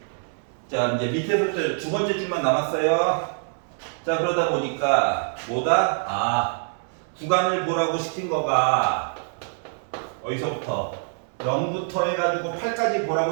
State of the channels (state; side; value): silent; left; 62 dB below the other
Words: 자 이제 밑에서부터 두 번째 줄만 남았어요 자 그러다 보니까 뭐다? 구간을 보라고 시킨 거가 어디서부터? 0부터 해가지고 8까지